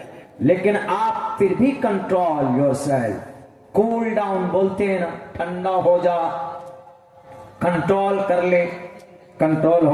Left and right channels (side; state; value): both; identical; correlation 1.00